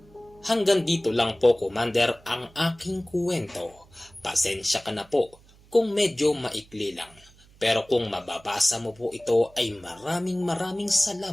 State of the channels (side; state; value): right; noise; hum, 27 dB below the sound